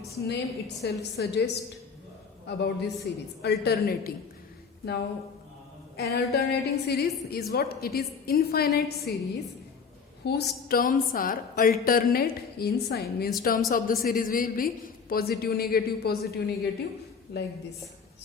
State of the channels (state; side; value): quieter; right; 5.7 dB